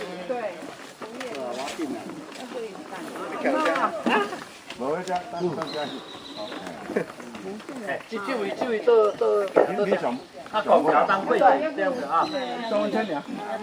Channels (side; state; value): both; identical; correlation 1.00